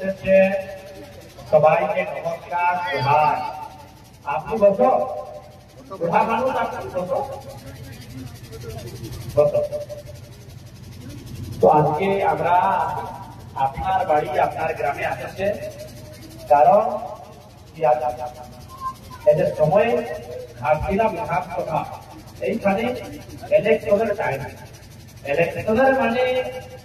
সবাইকে নমস্কার জোহার। আপনি বসো, বুড়া মানুষ আপনি বসো বসো। তো আজকে আমরা আপনার বাড়ি আপনার গ্রামে আসেছে, কারণ এদের সময় ঘাটছিলাম বিধানসভা, এইখানে ইলেকশনের টাইম। ইলেকশনের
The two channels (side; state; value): both; identical; correlation 1.00